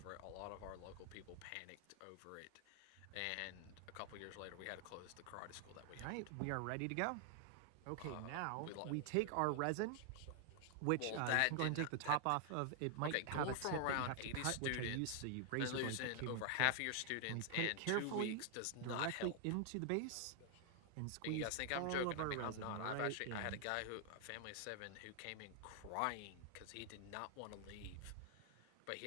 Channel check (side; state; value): both; different; correlation 0.00